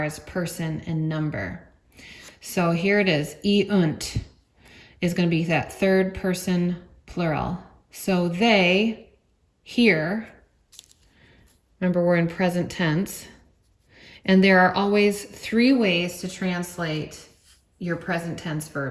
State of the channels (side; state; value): both; identical; correlation 1.00